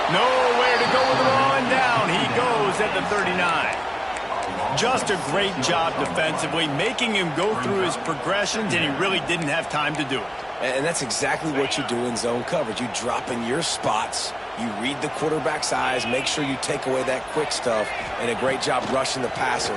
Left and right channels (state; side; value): identical; both; correlation 1.00